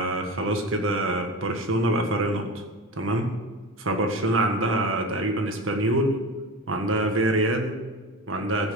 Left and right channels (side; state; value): both; normal; correlation 0.28